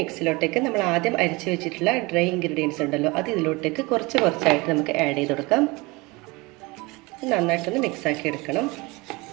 നമ്മൾ ആദ്യം അരിച്ച് വെച്ചിട്ടുള്ള ഡ്രൈ ഇൻഗ്രീഡിയൻസ് ഉണ്ടല്ലോ, അത് ഇതിലോട്ടേക്ക് കുറച്ചായിട്ട് നമുക്ക് ആഡ് ചെയ്ത് കൊടുക്കാം. നന്നായിട്ടൊന്ന് മിക്സാക്കി എടുക്കണം.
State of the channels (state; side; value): quieter; left; 24.4 dB